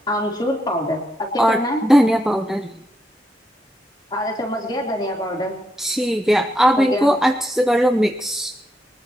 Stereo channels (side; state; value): both; normal; correlation 0.81